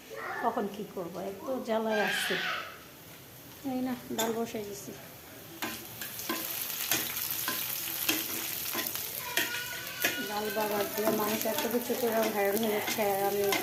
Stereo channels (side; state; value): both; identical; correlation 1.00